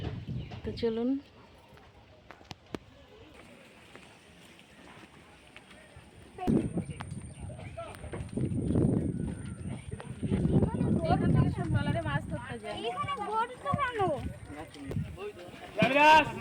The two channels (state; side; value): identical; both; correlation 1.00